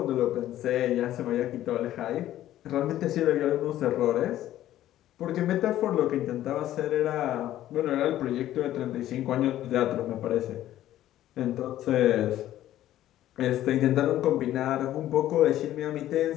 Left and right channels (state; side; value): quieter; right; 13.2 dB